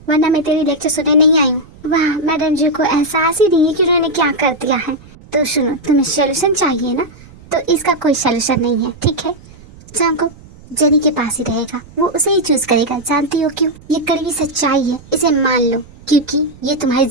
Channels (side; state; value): right; noise; rumble, 22 dB below the sound